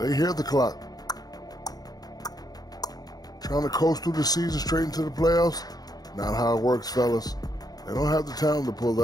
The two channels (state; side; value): late; right; 0.19 ms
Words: hear the clock. Trying to coast through the season straight into the playoffs? Not how it works, fellas. They don't have the talent to pull